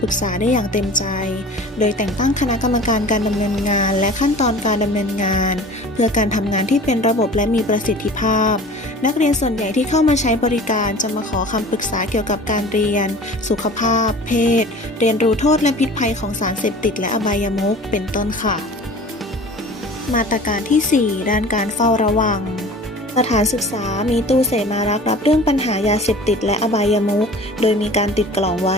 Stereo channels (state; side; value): normal; both; correlation 0.42